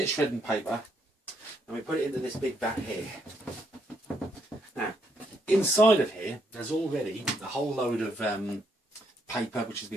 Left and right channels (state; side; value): normal; both; correlation 0.74